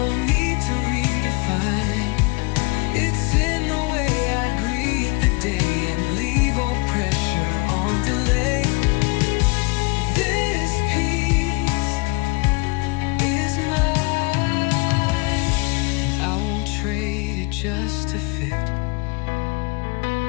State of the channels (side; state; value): right; quieter; 27.7 dB